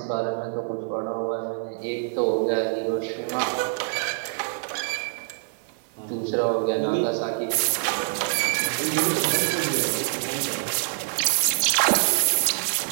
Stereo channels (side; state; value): left; silent; digital silence